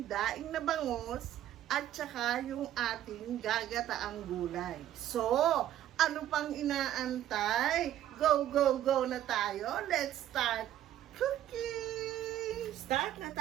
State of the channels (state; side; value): quieter; left; 12.2 dB